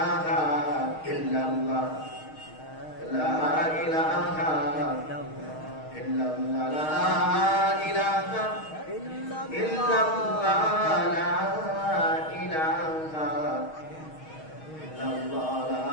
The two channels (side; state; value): right; late; 6.4 ms